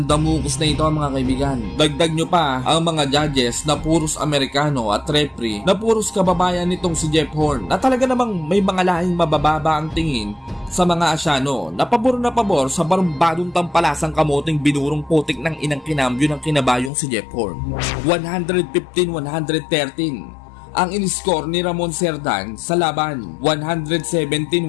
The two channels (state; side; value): drops out; right; at 16.9 s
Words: damukus na ito mga kaibigan. Dagdag nyo pa ang mga judges na puros Amerikano at referee na puros kababayan nitong si Jeff Horn na talaga namang may mga lahing mabababa ang tingin sa mga Asyano na pabor sa barumbadong tampalasang kamoting binurong putik ng inang kinambyo ng kinabayong si Jeff Horn. 115-113 ang in-score ni Ramon Cerdan sa laban,